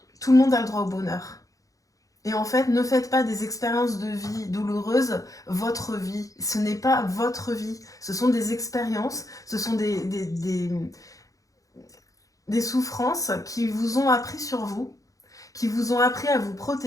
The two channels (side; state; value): right; late; 0.17 ms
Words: tout le monde a le droit au bonheur. Et en fait, ne faites pas des expériences de vie douloureuses votre vie. Ce n'est pas votre vie. Ce sont des expériences, ce sont des souffrances qui vous ont appris sur vous, qui vous ont appris à vous